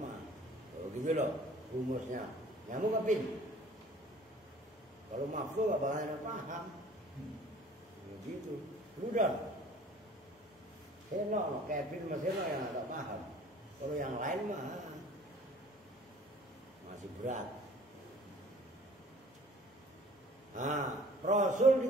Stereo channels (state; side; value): normal; both; correlation 0.50